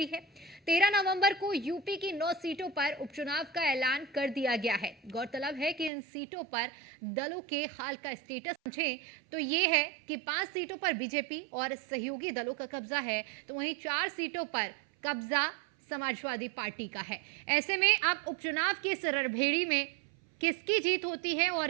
है। 13 नवंबर को यूपी की 9 सीटों पर उपचुनाव का ऐलान कर दिया गया है। गौरतलब है कि इन सीटों पर दलों के हाल का स्टेटस समझें तो ये है कि 5 सीटों पर बीजेपी और सहयोगी दलों का कब्जा है, तो वहीं 4 सीटों पर कब्जा समाजवादी पार्टी का है। ऐसे में अब उपचुनाव की इस रणभेरी में किसकी जीत होती है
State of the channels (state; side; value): drops out; left; at 5.9 s